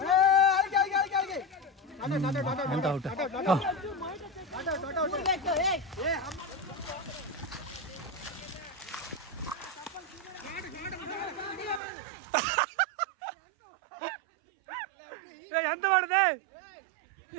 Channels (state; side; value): drops out; left; at 11.8 s